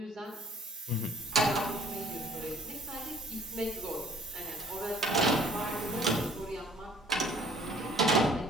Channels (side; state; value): both; normal; correlation 0.55